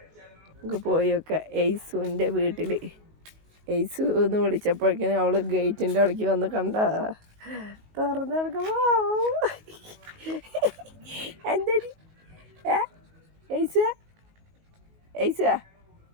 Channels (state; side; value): late; left; 19 ms